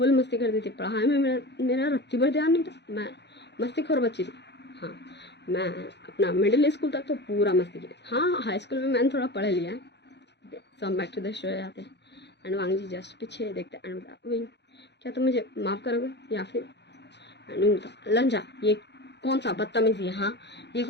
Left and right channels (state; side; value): late; right; 0.50 ms